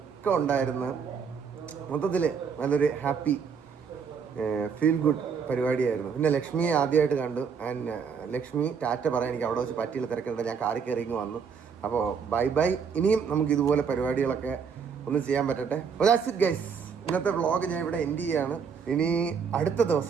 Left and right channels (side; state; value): left; quieter; 6.3 dB